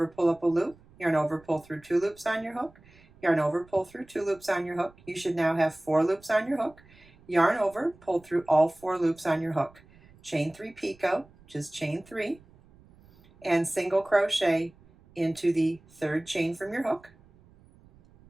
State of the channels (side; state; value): right; noise; rumble, 27 dB below the sound